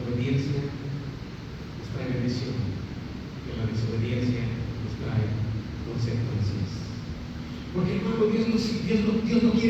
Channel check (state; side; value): identical; both; correlation 1.00